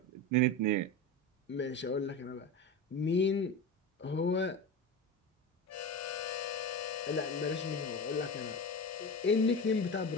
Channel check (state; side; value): normal; both; correlation 0.25